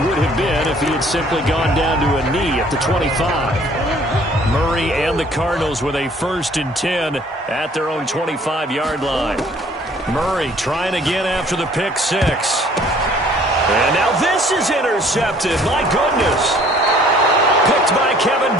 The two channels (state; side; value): normal; both; correlation 0.57